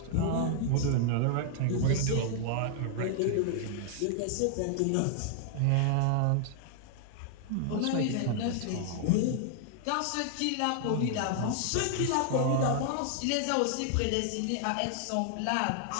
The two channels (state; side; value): different; both; correlation 0.00